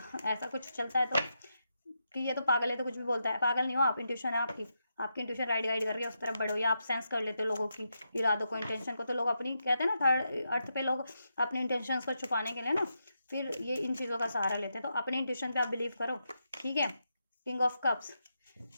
ऐसा कुछ चलता है तो कि ये तो पागल है तो कुछ भी बोलता है, पागल नहीं हो आप, इंट्यूशन है आपकी इंट्यूशन गाइड कर रही है, उस तरफ बढ़ो, या आप सेंस कर लेते हो लोगों की इरादों को, इंटेंशन को, तो लोग अपनी, कहते हैं ना थर्ड अर्थ पे लोग अपने इंटेंशंस को छुपाने के लिए ना फिर ये इन चीज़ों का सहारा लेते हैं, तो अपने इंट्यूशन पे आप बिलीव करो, ठीक है। किंग ऑफ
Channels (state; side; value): inverted; both; correlation -0.84